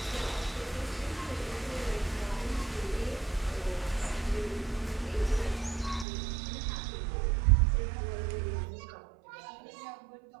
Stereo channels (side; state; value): left; drops out; at 6.1 s